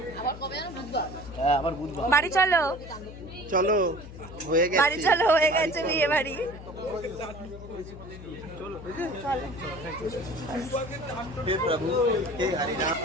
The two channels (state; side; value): noise; left; hum, 14 dB below the sound